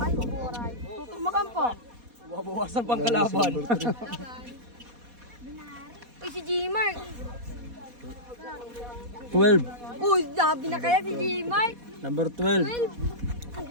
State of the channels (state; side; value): late; left; 4.2 ms